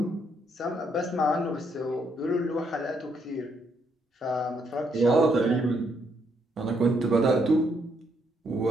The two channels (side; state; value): both; normal; correlation 0.74